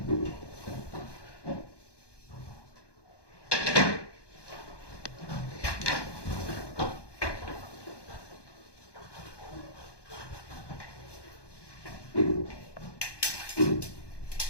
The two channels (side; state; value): right; late; 1.2 ms